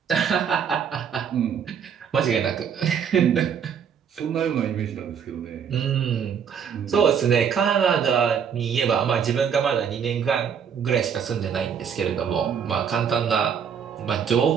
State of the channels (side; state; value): left; quieter; 7.5 dB